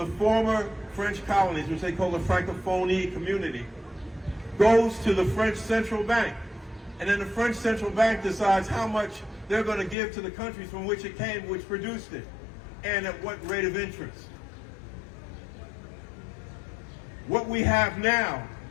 former French colonies, which they call the Francophonie community, goes to the French central bank. And then the French central bank decides how much they're going to give to the countries from which it came, which produced it, and at what rate of interest. What we have now,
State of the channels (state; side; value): drops out; right; at 10.0 s